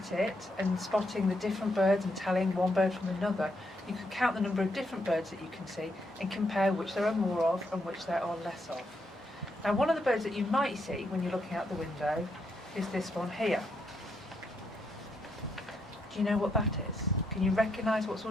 it and spotting the different birds and telling one bird from another, you can count the number of different birds that you can see and compare which there are more of and which there are less of. Now, one of the birds that you might see when you're looking out the window is this one here. Do you know what that is? Can you recognise what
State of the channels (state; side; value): normal; both; correlation 0.78